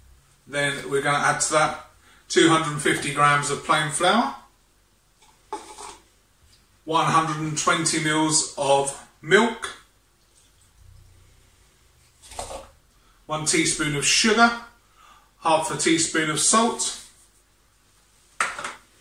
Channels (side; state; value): both; identical; correlation 1.00